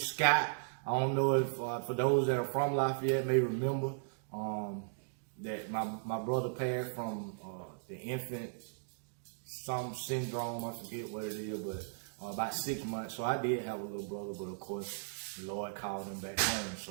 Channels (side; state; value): left; silent; digital silence